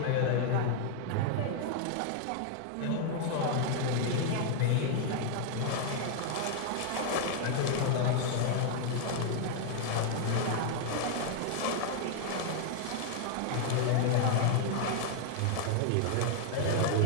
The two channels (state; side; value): different; both; correlation 0.00